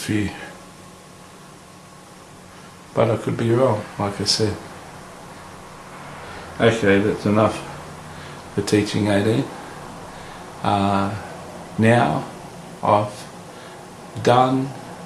But I could be wrong, like I said. Okay, that's enough for teaching 18. Now I've done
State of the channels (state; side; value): identical; both; correlation 1.00